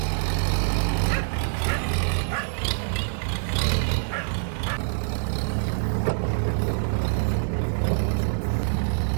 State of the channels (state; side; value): silent; left; 62 dB below the other